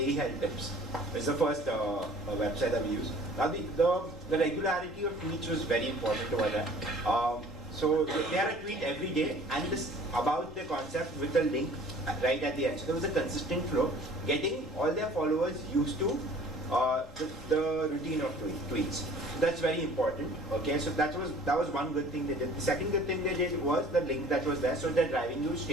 Health Tips. It's the first website that we used. Now the regularity of tweets was very important over there. So they had a tweet every day and this about the concept with the link right at the end. So there was a consistent flow, getting all their followers used to the routine of tweets. So that's very important. Okay, so that was one good thing they did. The second good thing they did was the link that was there, so they're driving you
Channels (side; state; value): both; normal; correlation 0.50